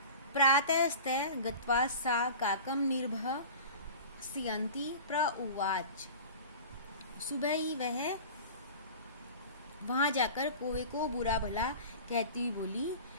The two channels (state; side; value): inverted; both; correlation -0.37